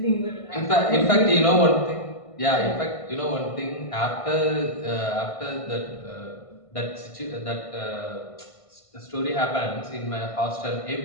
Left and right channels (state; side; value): late; right; 1.5 ms